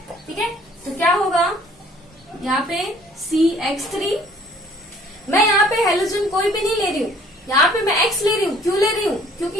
ठीक है, तो क्या होगा यहाँ पे CH3। मैं यहाँ पे हेलोजन कोई भी नहीं ले रही हूँ, यहाँ पे मैं X ले रही हूँ। क्यों ले रही हूँ,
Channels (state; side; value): normal; both; correlation 0.56